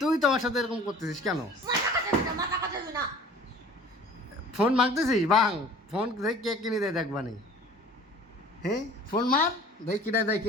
তুই তোমার সাথে এরকম করতেছিস কেন? ফোন মাগতেছিস বাং, ফোন দেখ কে কিনে দেয় দেখবানি। হ্যাঁ, ফোন মার, দেখ কিনে দেয়,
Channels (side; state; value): both; normal; correlation 0.47